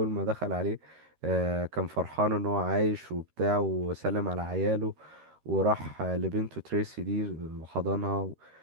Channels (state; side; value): late; left; 13 ms